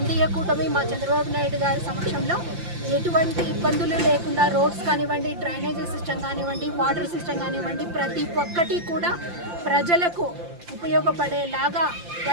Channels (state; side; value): late; left; 5.8 ms